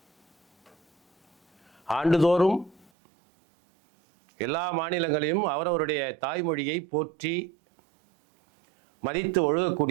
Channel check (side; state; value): left; drops out; at 2.9 s